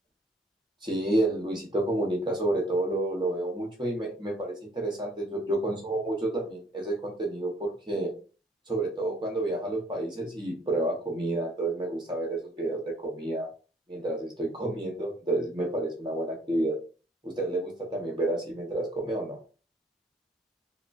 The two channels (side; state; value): both; normal; correlation 0.61